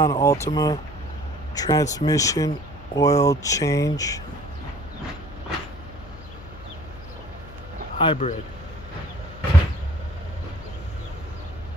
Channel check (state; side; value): noise; left; hum, 17 dB below the sound